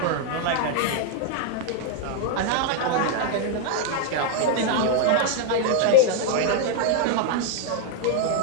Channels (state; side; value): different; both; correlation 0.00